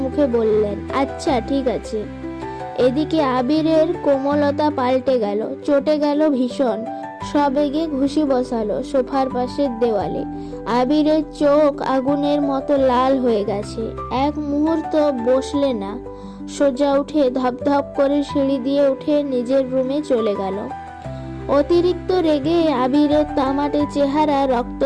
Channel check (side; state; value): both; identical; correlation 1.00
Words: মুখে বললেন, আচ্ছা ঠিক আছে। এদিকে আবিরের কোমলতা পাল্টে গেল, চটে গেল ভীষণ। সবেগে ঘুষি বসালো সোফার পাশের দেওয়ালে। আবিরের চোখ আগুনের মতো লাল হয়ে গেছে। এক মুহূর্ত বসলে না, সোজা উঠে ধপধপ করে সিঁড়ি দিয়ে উঠে নিজের রুমে চলে গেল। অতিরিক্ত রেগে আবিরের তামাটে চেহারা